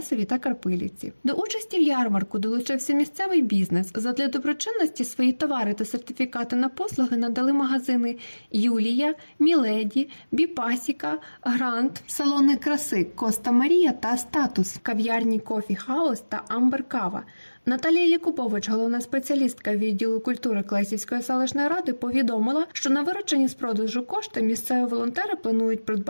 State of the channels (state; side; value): inverted; both; correlation -1.00